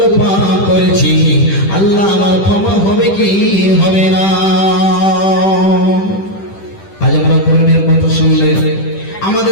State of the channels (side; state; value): right; late; 10 ms